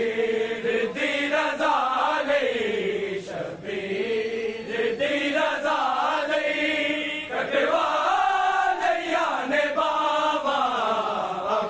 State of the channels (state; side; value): identical; both; correlation 1.00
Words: दी रज़ा लई शबीर दी रज़ा लई कटवाले याने बाबा